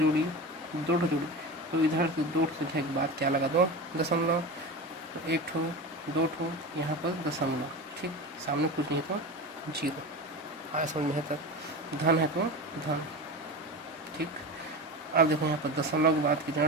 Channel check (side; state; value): both; normal; correlation 0.27